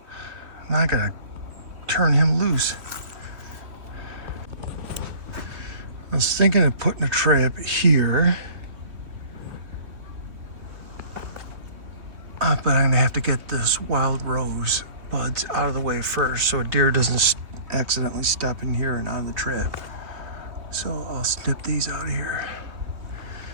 Now I gotta turn him loose. I was thinking of putting a trap here. But I'm gonna have to get this wild rose buds out of the way first so a deer doesn't accidentally step in here and out of the trap. So I'll snip these out of here.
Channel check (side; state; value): left; late; 2.9 ms